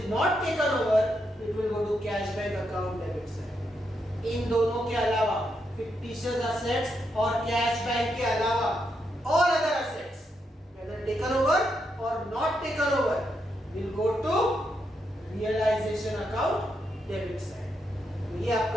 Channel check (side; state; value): both; normal; correlation 0.81